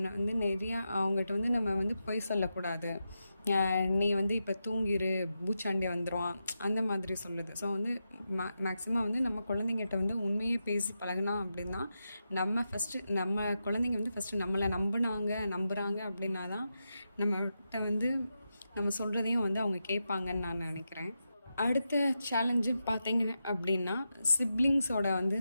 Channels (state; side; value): inverted; both; correlation -0.88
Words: வந்து நிறையா அவங்ககிட்ட வந்து நம்ம வந்து பொய் சொல்லக்கூடாது. நீ வந்து இப்போ தூங்கிரு, பூச்சாண்டி வந்துடுவான், அந்த மாதிரி சொல்லுது. ஸோ வந்து மேக்ஸிமம் வந்து நம்ம குழந்தைங்கிட்ட வந்து உண்மையை பேசி பழகினா அப்படின்னா நம்ம குழந்தைங்க வந்து ஃபஸ்ட்டு நம்மளை நம்புகிறாங்க அப்படின்னா தான் நம்மகிட்ட வந்து நம்ம சொல்கிறதையும் வந்து அவங்க கேட்பாங்கன்னு நான் நினைக்கிறேன். அடுத்த சேலஞ்சு பார்த்தீங்க அப்படின்னா சிப்ளிங்ஸோட வந்து